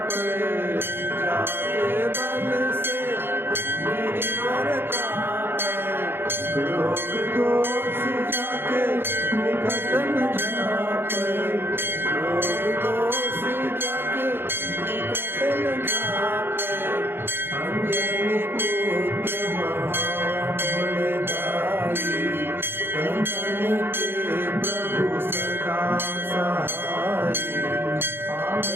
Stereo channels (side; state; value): left; late; 0.10 ms